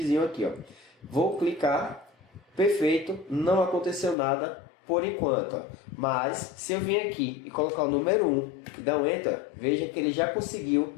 aqui, ó. Vou clicar, perfeito, não aconteceu nada por enquanto, ó. Mas se eu vir aqui e colocar o número 1 e dar um Enter, veja que ele já conseguiu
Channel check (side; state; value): right; drops out; at 4.2 s